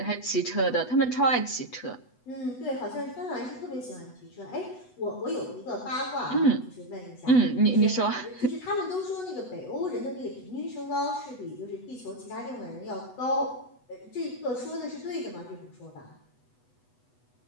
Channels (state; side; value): late; right; 8.1 ms